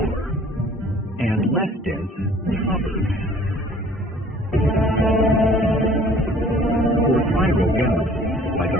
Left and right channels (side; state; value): both; normal; correlation 0.52